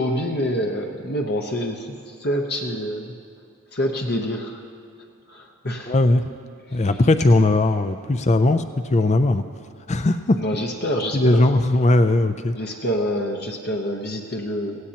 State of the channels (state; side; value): normal; both; correlation 0.73